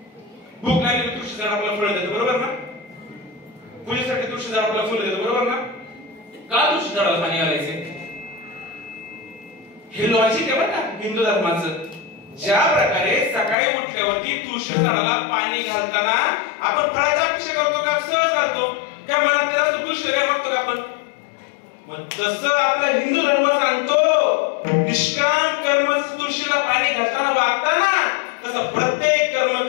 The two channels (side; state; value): right; drops out; at 13.6 s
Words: भूक लागली तर तुळशी झाड आपल्याला फळ देतं. बरोबर ना? पूजेसाठी तुळशी झाड आपल्याला फुलं देतं. बरोबर ना? का तुळशी झाडाला पाणी घालायचे? हे लॉजिक आहे बरं का हिंदू धर्माचं. ज्या प्रकारे सकाळी उठल्यावरती तुळशी झाडाला पाणी घालताना आपण फळाची अपेक्षा करतो का? सहज घालतो काय? मनात त्याला तुळशी काय मागतो का आपण? मग तसं आपला हिंदू धर्म सांगतो, निष्काम कर्म तुळशीला पाणी घालताना वागताना तसं प्रत्येक कर्म